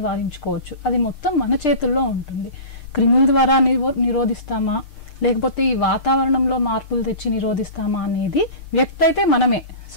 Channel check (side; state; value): right; late; 6.7 ms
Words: అది మొత్తం మన చేతుల్లో ఉంటుంది. క్రిముల ద్వారా నిరోధిస్తామా, లేకపోతే ఈ వాతావరణంలో మార్పులు తెచ్చి నిరోధిస్తామా అనేది వ్యక్తి అయితే మనమే.